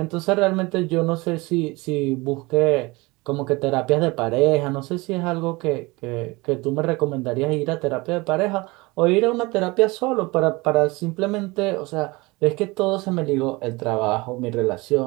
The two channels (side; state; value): left; quieter; 23.7 dB